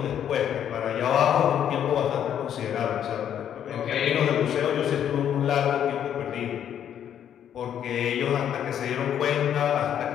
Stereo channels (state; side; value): quieter; right; 9.6 dB